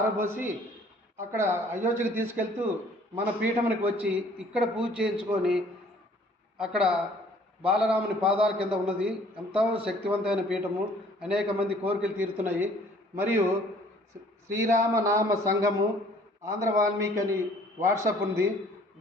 అక్కడ అయోధ్యకు తీసుకెళ్తూ మన పీఠమునికి వచ్చి ఇక్కడ పూజ చేయించుకొని అక్కడ బాలరాముని పాదాల కింద ఉన్నది. ఎంతో శక్తివంతమైన పీఠము, అనేక మంది కోరికలు తీరుతున్నాయి. మరియు శ్రీరామనామ సంఘము ఆంధ్ర వాల్మీకి అని వాట్సాప్ ఉంది.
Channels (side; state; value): both; normal; correlation 0.56